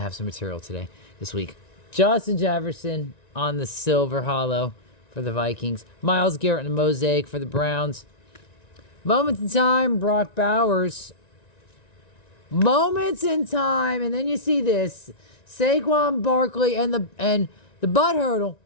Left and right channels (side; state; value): right; late; 1.9 ms